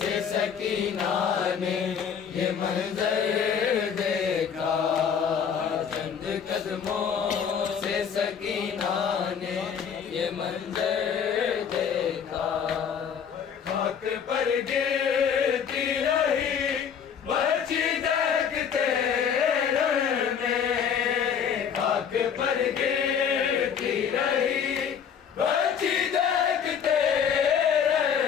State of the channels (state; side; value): quieter; right; 7.5 dB